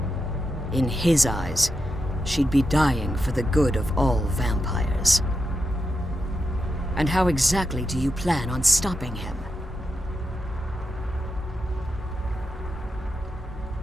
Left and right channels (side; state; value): both; normal; correlation 0.86